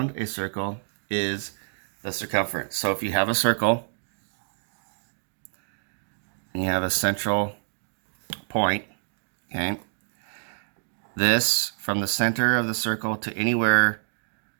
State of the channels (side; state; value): left; silent; digital silence